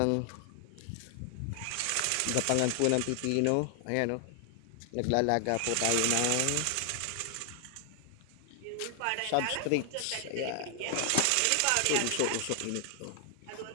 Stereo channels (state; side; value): different; both; correlation 0.00